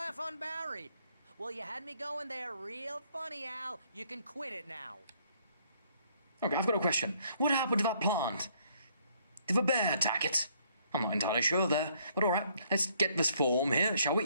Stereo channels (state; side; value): inverted; both; correlation -0.66